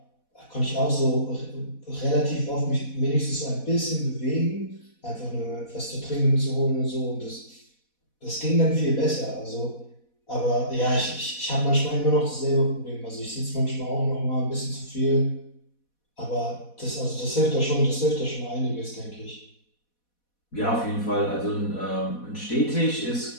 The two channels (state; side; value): late; right; 4.1 ms